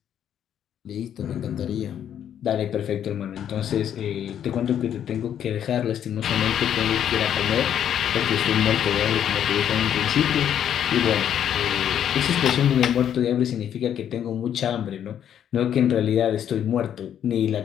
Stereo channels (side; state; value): right; quieter; 9.6 dB